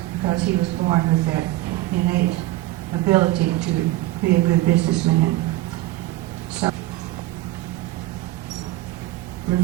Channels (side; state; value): left; quieter; 16.9 dB